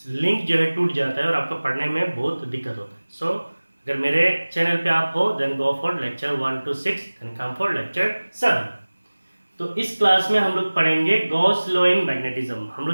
लिंक जो है टूट जाता है और आपको पढ़ने में बहुत दिक्कत होता है. सो अगर मेरे चैनल पे आप हो, then go for lecture 1 to 6, then come for lecture 7. तो इस क्लास में हम लोग पढ़ेंगे गॉस लॉ इन मैग्नेटिज्म. हम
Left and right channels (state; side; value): inverted; both; correlation -1.00